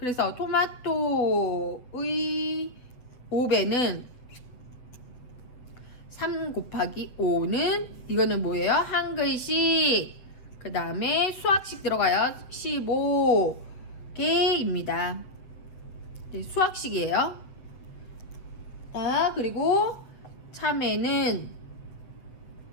토마토의 5배는 3 곱하기 5는 이거는 뭐예요? 한글식. 그 다음에 수학식 들어가요. 15개입니다. 네, 수학식이에요. 자, 그리고 참외는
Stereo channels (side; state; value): right; late; 8.1 ms